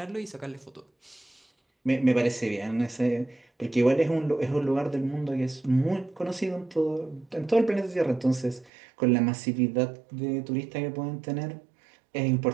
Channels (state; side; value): drops out; left; at 8.7 s